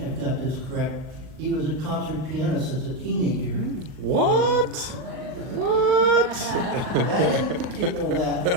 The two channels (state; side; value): late; left; 39 ms